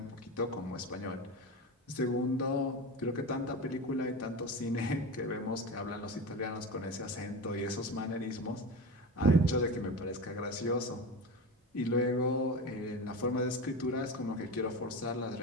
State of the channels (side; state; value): both; normal; correlation 0.25